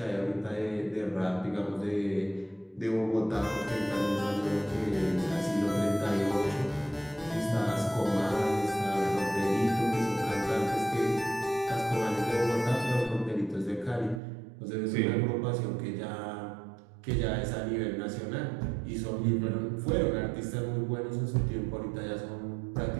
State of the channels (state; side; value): drops out; left; at 14.2 s